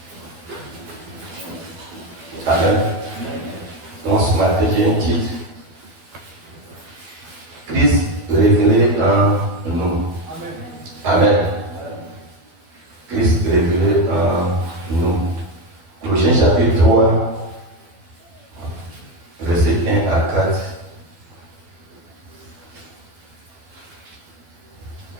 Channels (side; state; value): left; late; 12 ms